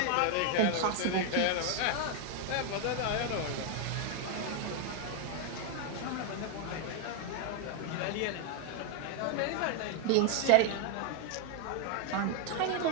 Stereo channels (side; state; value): both; different; correlation 0.01